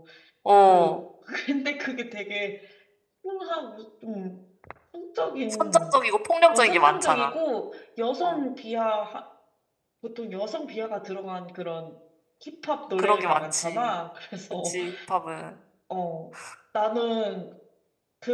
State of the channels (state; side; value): identical; both; correlation 1.00